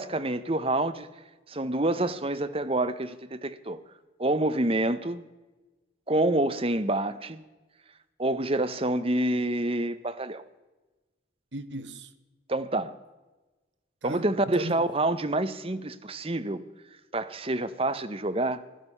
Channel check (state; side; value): normal; both; correlation 0.41